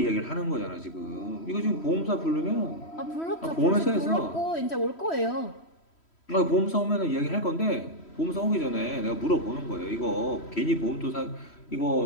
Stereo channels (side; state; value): right; late; 3.1 ms